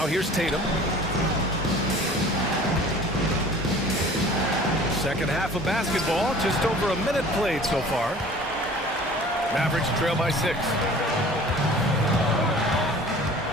here's Tatum. Second half of basketball, just over a minute played so far. Mavericks trail by 6.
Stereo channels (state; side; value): normal; both; correlation 0.46